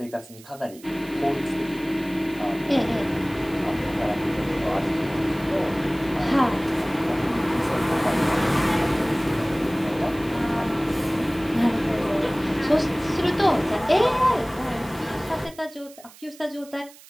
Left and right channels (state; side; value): noise; right; hiss, 22 dB below the sound